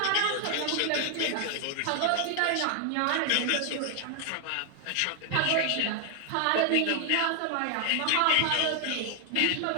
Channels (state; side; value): different; both; correlation 0.00